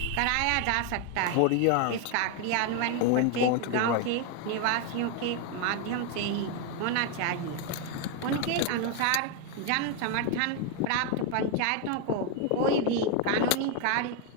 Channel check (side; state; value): both; different; correlation 0.01